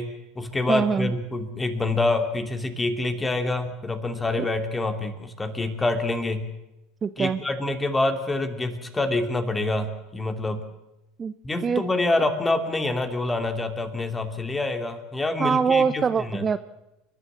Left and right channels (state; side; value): normal; both; correlation 0.78